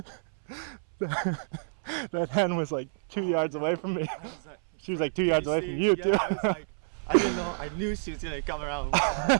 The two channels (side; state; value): left; silent; 59 dB below the other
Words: god. That hen was like 2 yards away from me. She was like 2 yards away from you, yeah, too. I was like, I didn't know. I knew she was gonna come around.